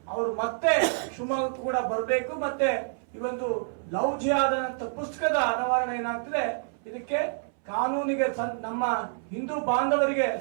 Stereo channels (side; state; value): left; silent; 60 dB below the other